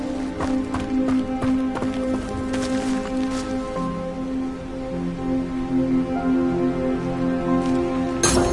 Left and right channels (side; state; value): both; identical; correlation 1.00